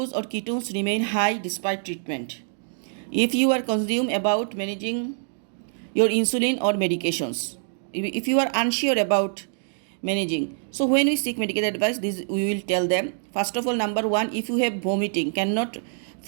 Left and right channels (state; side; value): silent; left; digital silence